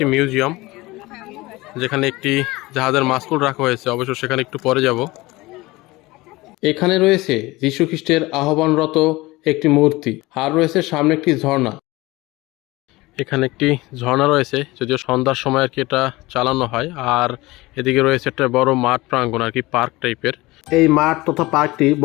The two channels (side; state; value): right; quieter; 20.7 dB